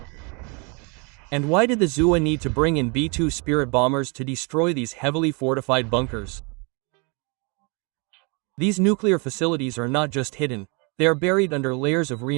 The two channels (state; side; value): quieter; left; 32.4 dB